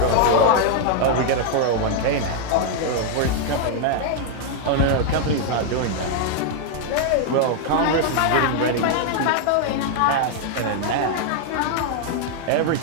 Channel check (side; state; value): both; different; correlation 0.00